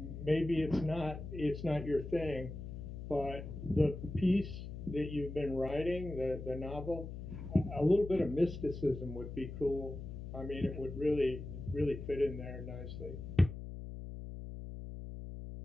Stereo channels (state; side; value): noise; left; hum, 9 dB below the sound